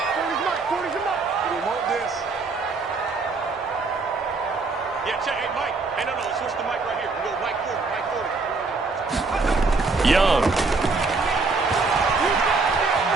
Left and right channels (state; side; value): quieter; left; 4.0 dB